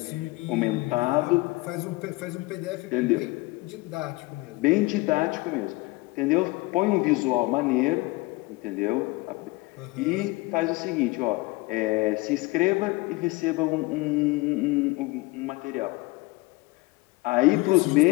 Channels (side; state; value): right; quieter; 22.4 dB